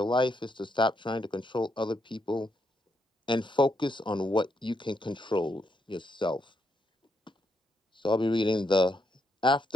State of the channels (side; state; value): both; normal; correlation 0.79